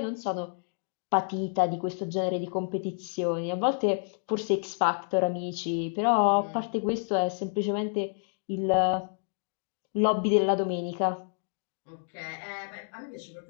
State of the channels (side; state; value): right; silent; digital silence